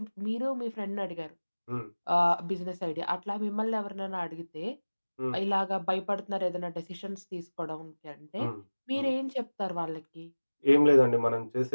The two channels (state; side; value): inverted; both; correlation -1.00